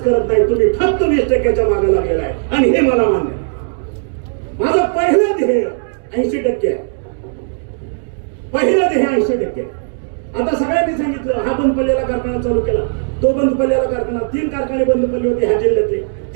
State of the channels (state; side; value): silent; left; digital silence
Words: करत नाही, तुम्ही फक्त 20%च्या मागे लागलेला आहे. आणि हे मला मान्य आहे. माझं पहिलं ध्येय 80% आहे, पहिलं ध्येय 80%. आता सगळ्यांनी सांगितलं हा बंद पडलेला कारखाना चालू केला, तो बंद पडलेला कारखाना, 3 कारखाने बंद पडले होते ह्या जिल्ह्यातले,